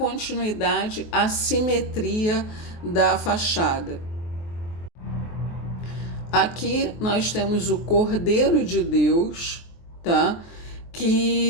à simetria da fachada. Aqui nós temos o Cordeiro de Deus, tá?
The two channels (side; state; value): right; late; 23 ms